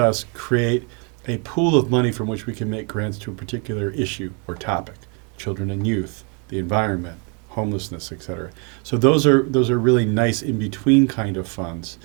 create a pool of money from which we can make grants to a particular issue or topic, children and youth, the environment, homelessness, et cetera. So those are really nice in-between kind of funds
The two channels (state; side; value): quieter; left; 35.3 dB